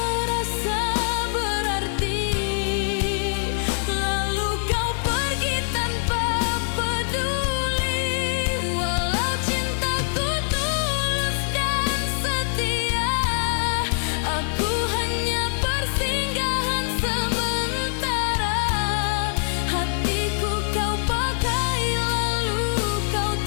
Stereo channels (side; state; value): right; silent; digital silence